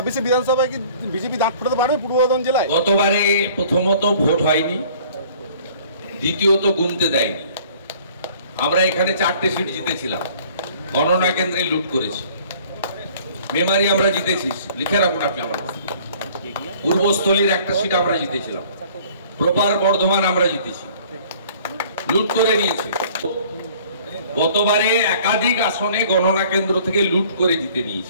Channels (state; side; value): inverted; both; correlation -0.53